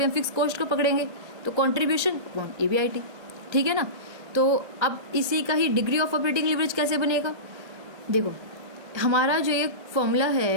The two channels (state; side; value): late; left; 1.3 ms